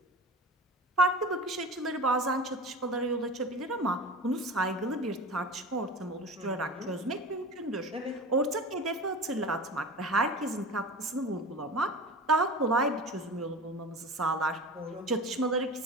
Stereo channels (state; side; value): normal; both; correlation 0.34